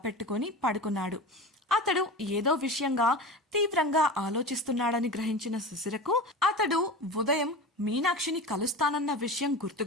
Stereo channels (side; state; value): both; normal; correlation 0.30